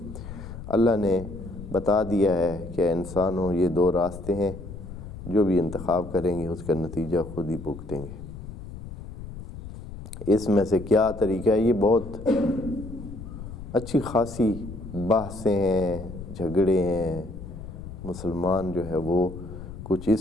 اللہ نے بتا دیا ہے کہ انسانوں یہ دو راستے ہیں، جو بھی انتخاب کریں گے اس کا نتیجہ خود ہی بھگتیں گے۔ اس میں سے کیا طریقہ ہے، یہ بہت اچھی خاصی بحثیں ہیں، جھگڑے ہیں۔ مسلمان جو ہے وہ کچھ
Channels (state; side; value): noise; left; rumble, 12 dB below the sound